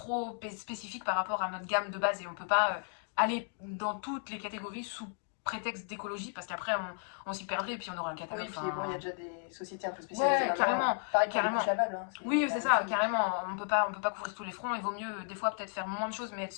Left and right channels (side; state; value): right; silent; 55 dB below the other